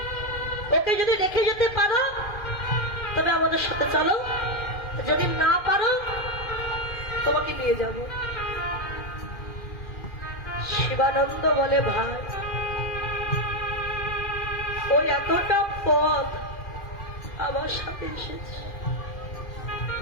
ওকে যদি রেখে যেতে পারো তবে আমাদের সাথে চলো, যদি না পারো তোমাকে নিয়ে যাব। শিবানন্দ বলে, ভাই ওই এতটা পথ আমার সাথে এসেছে,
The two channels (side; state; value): right; late; 2.5 ms